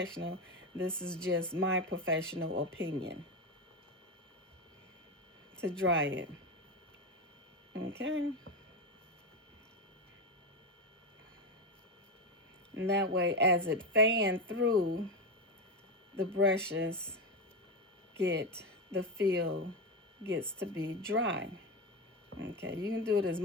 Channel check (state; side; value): normal; both; correlation 0.14